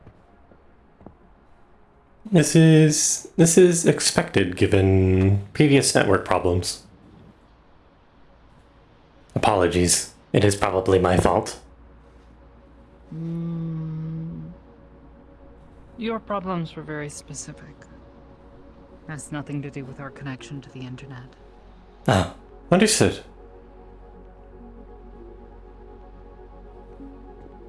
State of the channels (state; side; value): identical; both; correlation 1.00